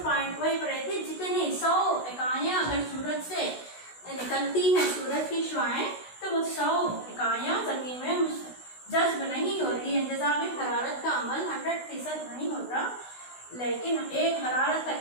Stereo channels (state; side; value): late; right; 16 ms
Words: पॉइंट वही पढ़े थे, जितनी 100 इकाइयां अगर सूरज से निकलती हैं, सूरज की शुआएं, तो वो 100 इकाइयां जमीन में जज्ब नहीं होती है। इंतजाम हरारत का अमल 100% नहीं होता, लेकिन एक हरारत का